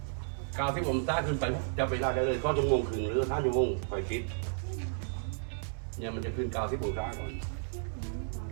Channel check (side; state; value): left; silent; digital silence